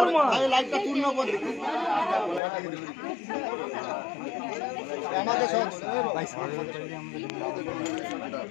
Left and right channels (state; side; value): drops out; right; at 2.4 s